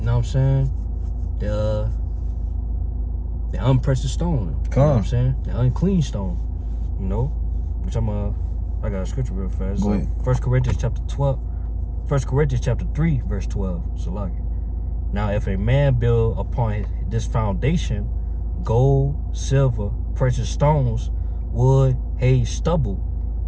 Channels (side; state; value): both; identical; correlation 1.00